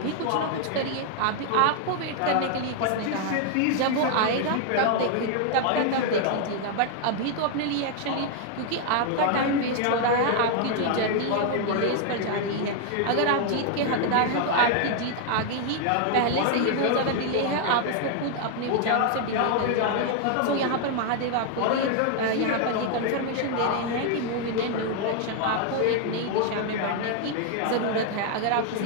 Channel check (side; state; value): both; different; correlation 0.00